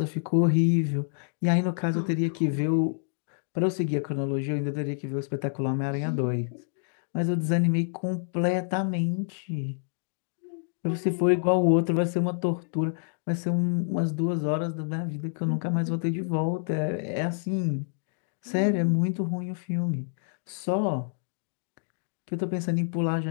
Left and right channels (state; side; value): silent; right; digital silence